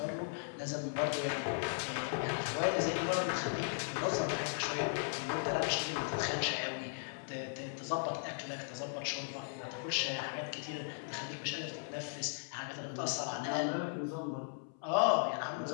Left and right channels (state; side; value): silent; right; 53 dB below the other